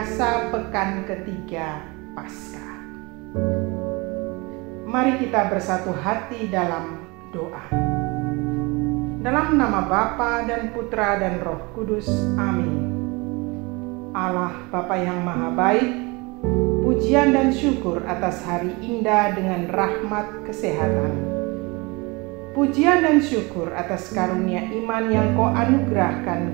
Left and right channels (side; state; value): left; quieter; 26.3 dB